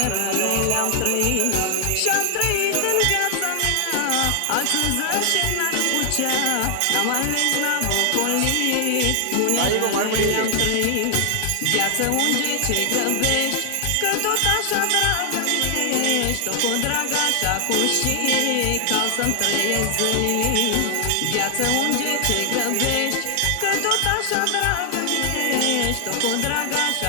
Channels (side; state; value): both; different; correlation 0.00